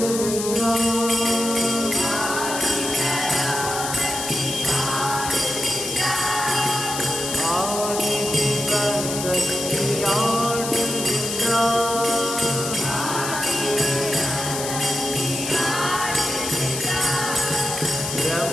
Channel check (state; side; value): noise; left; hiss, 5 dB below the sound